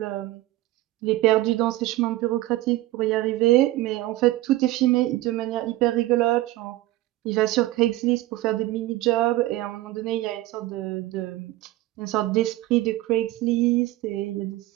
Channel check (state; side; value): quieter; left; 16.8 dB